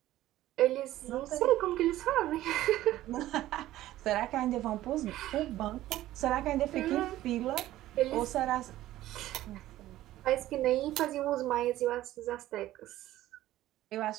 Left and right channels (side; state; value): left; quieter; 14.8 dB